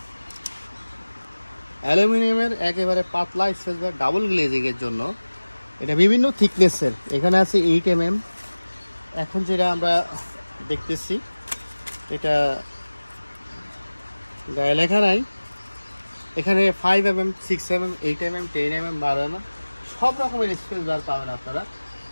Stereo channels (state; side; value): inverted; both; correlation -1.00